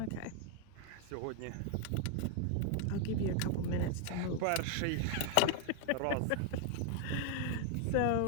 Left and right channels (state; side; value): different; both; correlation 0.00